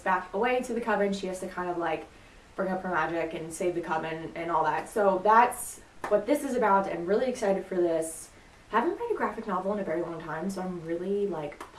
back away to the coven, she has to kind of like bring up her magic and save the coven and all that. So that's what this is about. I'm really excited for this. I haven't read a graphic novel in a very long time, so I'm really like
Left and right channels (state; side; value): identical; both; correlation 1.00